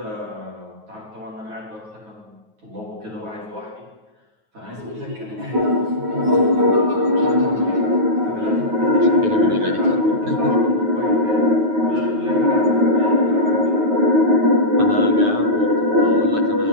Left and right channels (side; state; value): left; late; 9.3 ms